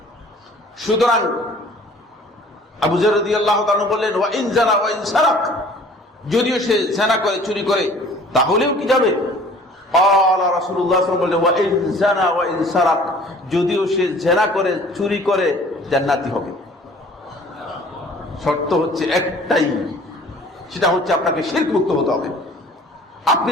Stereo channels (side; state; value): both; normal; correlation 0.50